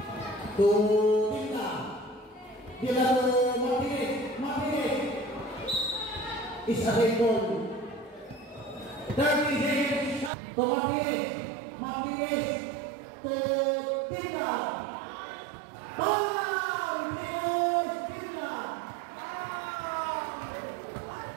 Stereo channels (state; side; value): drops out; left; at 10.3 s